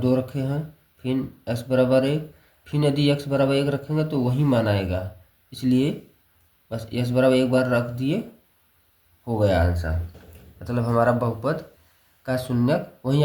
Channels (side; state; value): both; identical; correlation 1.00